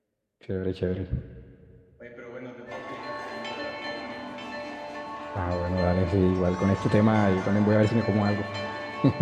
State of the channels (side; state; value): both; identical; correlation 1.00